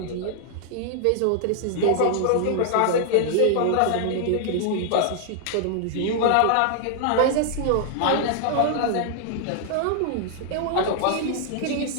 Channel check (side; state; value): both; different; correlation 0.00